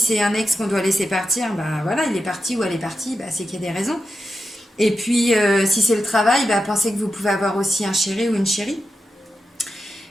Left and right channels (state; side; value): normal; both; correlation 0.90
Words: un ex qu'on doit laisser partir, voilà, il est parti ou elle est partie, c'est qu'il y a des raisons. Et puis, si c'est le travail, pensez que vous pouvez avoir aussi un chéri ou une chérie.